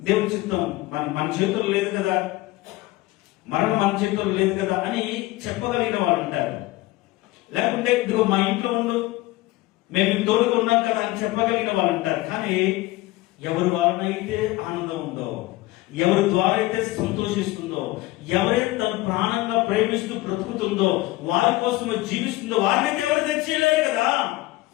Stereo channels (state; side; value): quieter; right; 19.0 dB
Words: దేవుడి చిత్తం మన చేతుల్లో లేదు కదా, మరణం మన చేతుల్లో లేదు కదా అని చెప్పగలిగిన వాళ్ళు ఉంటారు. లేకుంటే ఇదిగో మా ఇంట్లో ఉండు, మేము తోడుగా ఉన్నాం కదా అని చెప్పగలిగిన వాళ్ళు ఉంటారు. కానీ ఎవరి వారినైతే ఆనందం ఉందో, ఎవరి ద్వారా అయితే సంతోషిస్తుందో, ఎవరైతే తన ప్రాణంగా ప్రేమిస్తూ బ్రతుకుతుందో, వారి కోసమే జీవిస్తుందో వారినైతే ఎవరు తెచ్చేయలేరు కదా.